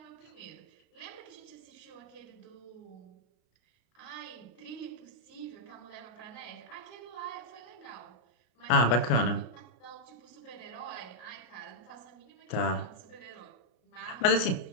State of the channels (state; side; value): late; right; 33 ms